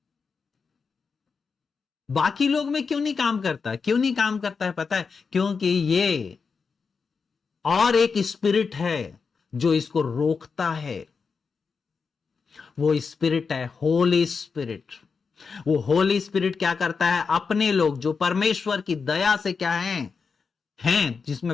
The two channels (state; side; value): quieter; right; 5.3 dB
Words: बाकी लोग में क्यों नहीं काम करता? क्यों नहीं काम करता है पता है? क्योंकि ये और एक स्पिरिट है जो इसको रोकता है। वो स्पिरिट है होली स्पिरिट। वो होली स्पिरिट क्या करता है? अपने लोग जो परमेश्वर की दया से क्या हैं,